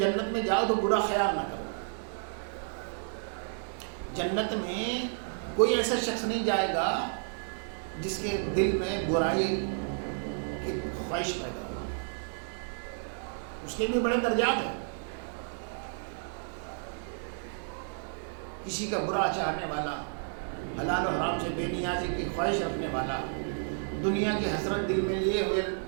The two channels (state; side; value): silent; left; digital silence